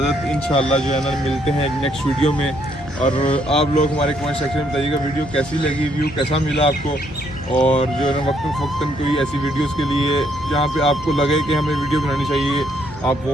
इंशाल्लाह जो है ना मिलते हैं नेक्स्ट वीडियो में। और आप लोग हमारे कमेंट सेक्शन में बताइएगा वीडियो कैसी लगी, व्यू कैसा मिला आपको। और जो है ना वक्तन कोई ऐसी वीडियोस के लिए जहाँ पे आपको लगे कि हमें वीडियो बनानी चाहिए, आप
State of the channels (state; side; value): normal; both; correlation 0.70